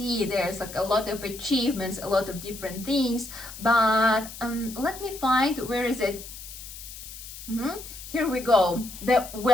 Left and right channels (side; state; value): left; noise; hiss, 13 dB below the sound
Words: there's like a lot of achievements, a lot of different things. But let me find, where is it? Here we go, the